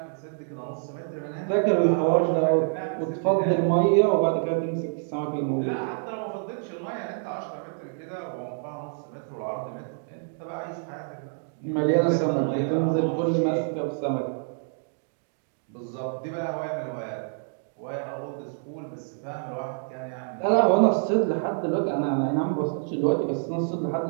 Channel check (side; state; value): left; silent; digital silence